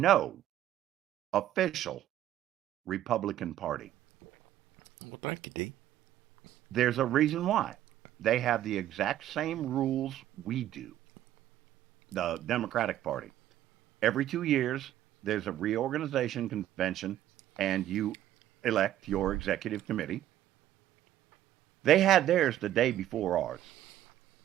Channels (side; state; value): left; quieter; 12.5 dB